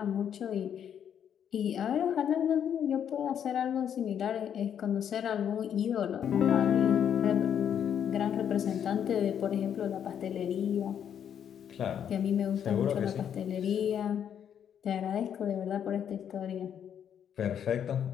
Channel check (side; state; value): right; quieter; 8.8 dB